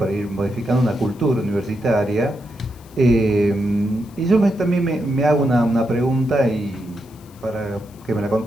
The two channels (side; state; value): left; noise; hiss, 27 dB below the sound